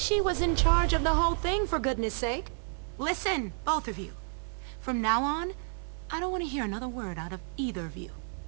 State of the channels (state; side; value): silent; left; 57 dB below the other